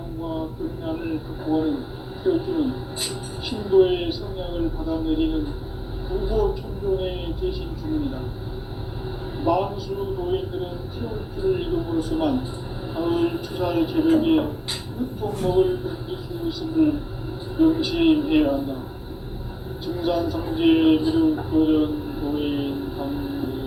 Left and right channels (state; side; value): identical; both; correlation 1.00